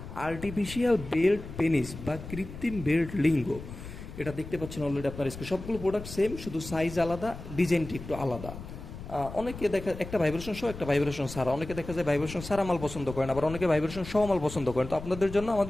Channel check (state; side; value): noise; left; rumble, 12 dB below the sound